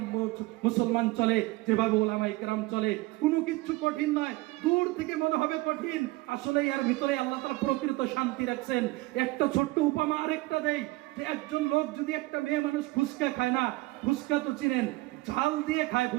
মুসলমান চলে, যেভাবে উলামায়ে কেরাম চলে। কোনো কিছু কঠিন নয়, দূর থেকে মনে হবে কঠিন, আসলে এর ভিতরে আল্লাহ তাআলা প্রকৃত শান্তি রাখছেন। একটা ছোট্ট উপমা আরেকটা দেই, যে একজন লোক যদি একটা মেয়ে মানুষ ফুচকা খায় না, ফুচকা তো চিনেন, ঝাল দিয়ে খায়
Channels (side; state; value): left; quieter; 20.7 dB